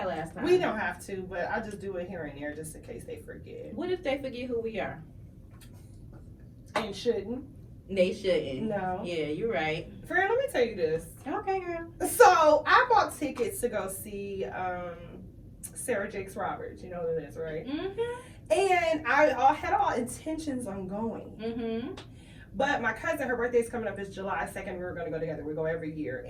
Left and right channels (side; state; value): both; identical; correlation 1.00